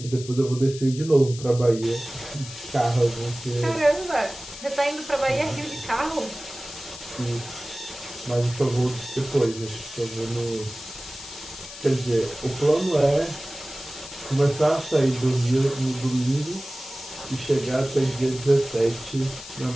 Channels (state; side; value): noise; left; hiss, 13 dB below the sound